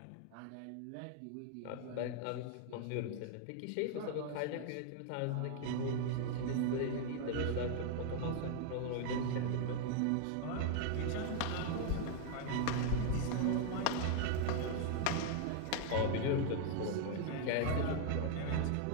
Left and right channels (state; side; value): different; both; correlation 0.00